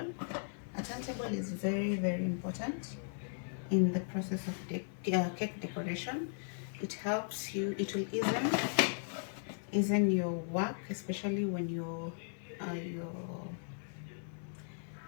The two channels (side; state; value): right; silent; digital silence